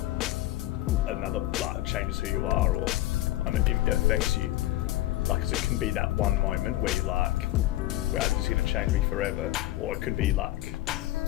changes who you are, or it affects you. Like, 'cause it can be that one moment where you're like, well, this is going to change me forever, or it could be like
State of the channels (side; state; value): right; quieter; 15.5 dB